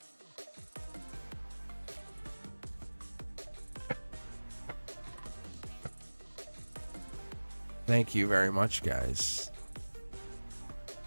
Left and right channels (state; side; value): inverted; both; correlation -1.00